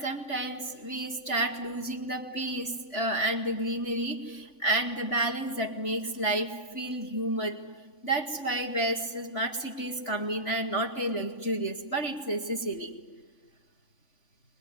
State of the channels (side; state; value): right; late; 3.5 ms